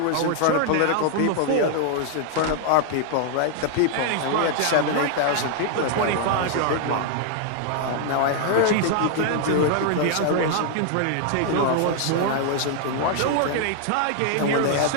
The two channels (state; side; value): different; both; correlation 0.00